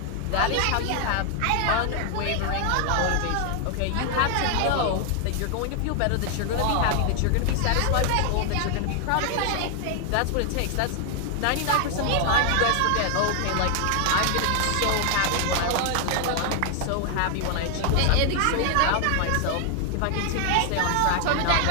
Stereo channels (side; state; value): both; different; correlation 0.00